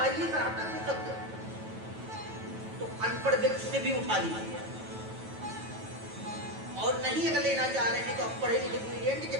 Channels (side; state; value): left; late; 9.2 ms